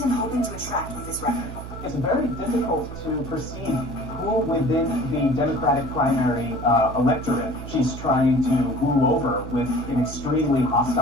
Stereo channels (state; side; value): noise; right; hum, 11 dB below the sound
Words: hoping to attract with this record? It's very difficult to perceive who within the Democratic primary electorate she's trying to woo over with an extremely